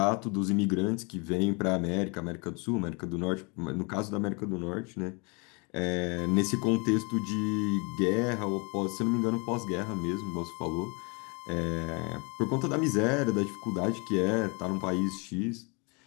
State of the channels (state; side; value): quieter; right; 31.6 dB